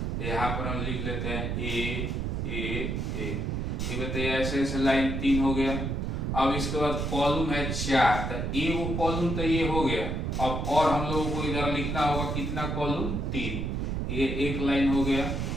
यहाँ पर हम लिख लेते हैं ए ए ए, ठीक है, तो ऐसे ऐसे लाइन 3 हो गया। अब इसके बाद कॉलम है 4, तो ए वो कॉलम तो ये हो गया। अब और हम लोगों को इधर लिखना होगा कितना कॉलम, 3, ये एक लाइन हो गया।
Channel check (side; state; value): right; noise; rumble, 1 dB below the sound